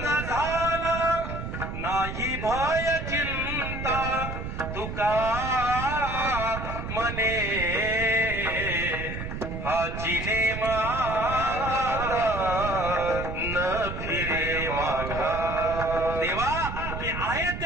झाला, नाही भय चिंता तुका मने, हाची नेमाता न फिरे माघारी. देवा, मी आहे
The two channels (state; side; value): noise; right; rumble, 6 dB below the sound